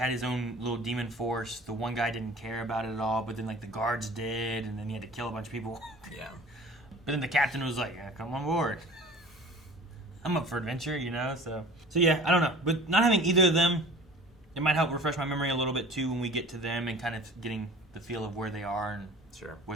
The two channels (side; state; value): both; normal; correlation 0.43